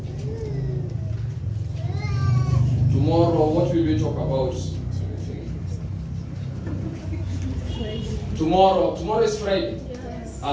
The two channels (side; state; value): both; identical; correlation 1.00